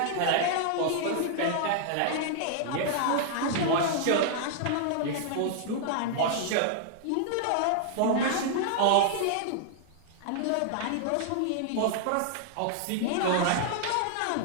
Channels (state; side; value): different; both; correlation -0.01